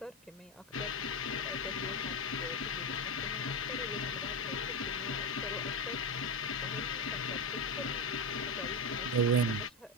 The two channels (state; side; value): normal; both; correlation 0.13